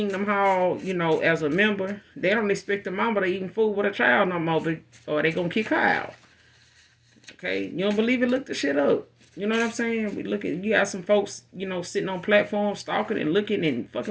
hall, as a member, they don't expect the mama to even fool with a child no more, or they gonna kick her out. Okay, you don't believe it? Look the shit up. You know what I'm saying? You got some folks, sitting on platforms, stalking and looking and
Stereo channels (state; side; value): identical; both; correlation 1.00